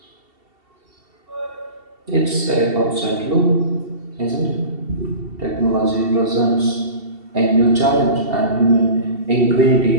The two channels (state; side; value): late; left; 2.7 ms